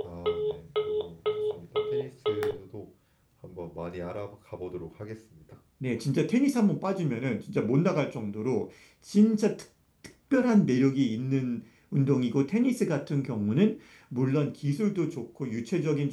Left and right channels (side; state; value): both; identical; correlation 1.00